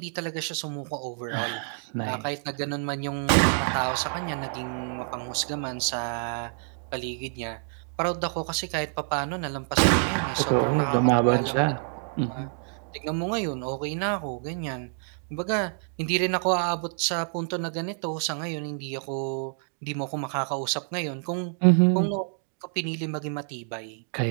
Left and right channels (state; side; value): silent; left; 57 dB below the other